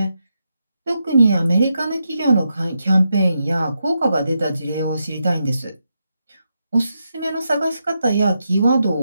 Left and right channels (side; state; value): both; inverted; correlation -0.85